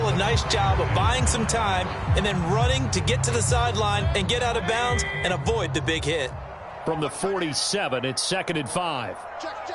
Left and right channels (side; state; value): both; identical; correlation 1.00